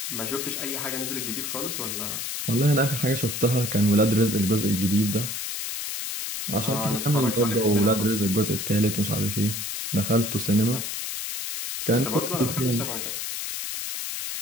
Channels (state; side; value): noise; left; hiss, 4 dB below the sound